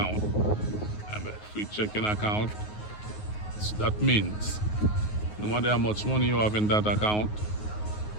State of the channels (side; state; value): right; late; 9.5 ms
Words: And a free checking account, that means no matter how much money you have in that account,